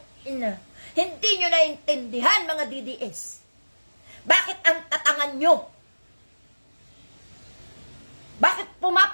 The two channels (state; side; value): inverted; both; correlation -1.00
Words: ina, hindi nyo naintindihan mga DDS. Bakit ang tatangan nyo? Bakit